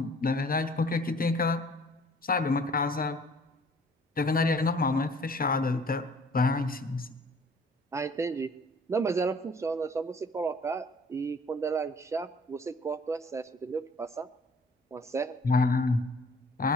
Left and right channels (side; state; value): both; normal; correlation 0.54